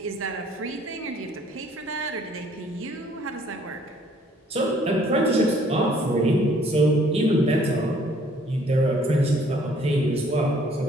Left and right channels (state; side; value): normal; both; correlation 0.60